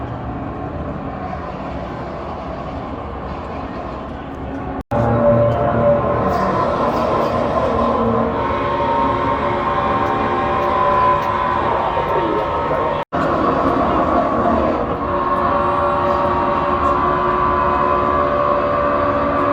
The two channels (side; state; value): both; identical; correlation 1.00